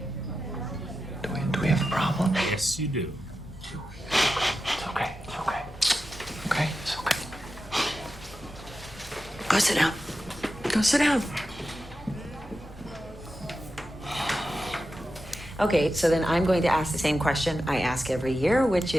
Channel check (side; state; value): both; normal; correlation 0.91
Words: Do we have a problem? Yes, you do. It's okay. It's okay. Okay? It's okay. Go sit down. Go sit down. Okay, so then I'm going to ask the same question I ask every year, which